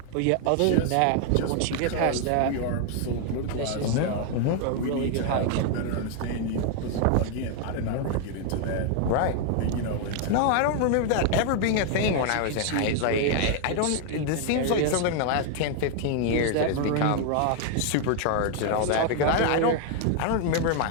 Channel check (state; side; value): different; both; correlation 0.00